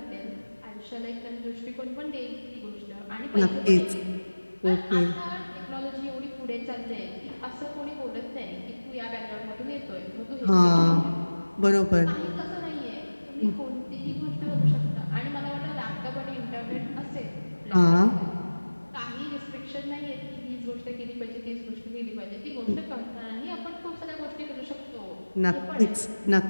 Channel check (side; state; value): both; inverted; correlation -1.00